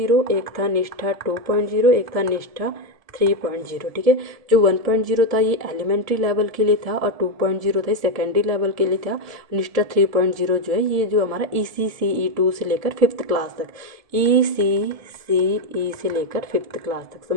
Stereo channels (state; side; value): late; left; 1.7 ms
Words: एक था निष्ठा 2.0, एक था निष्ठा 3.0, ठीक है। जो 1.0 था ये एलिमेंट्री लेवल के लिए था, और 2.0 था सेकेंडरी लेवल के लिए था। निष्ठा 3.0 जो है ये जो हमारा ECCE2 से लेकर 5th क्लास तक, ECCE से लेकर 5th क्लास तक,